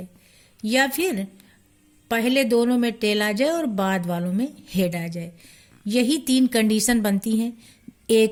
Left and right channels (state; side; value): identical; both; correlation 1.00